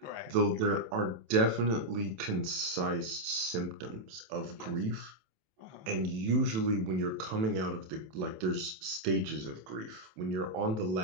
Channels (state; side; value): late; left; 27 ms